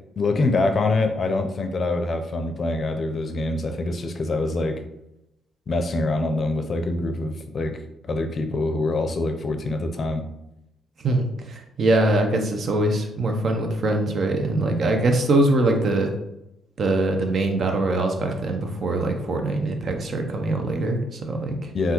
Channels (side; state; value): both; normal; correlation 0.73